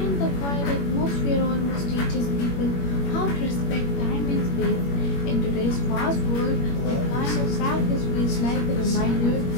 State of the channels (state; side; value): late; right; 21 ms